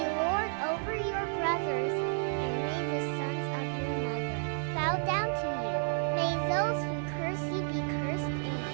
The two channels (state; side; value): silent; left; 57 dB below the other